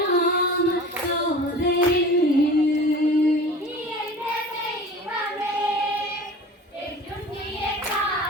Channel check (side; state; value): both; normal; correlation 0.39